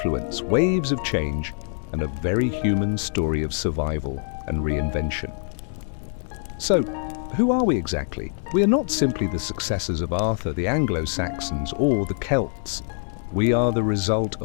waves of change, and a very human story of survival and reinvention. So, who are we exactly? We are not simply the successors of Arthur, the Anglo-Saxons, or the Celts. We are the result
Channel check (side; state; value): right; silent; 59 dB below the other